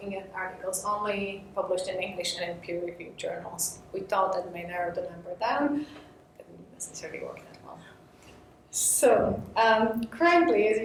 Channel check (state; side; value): identical; both; correlation 1.00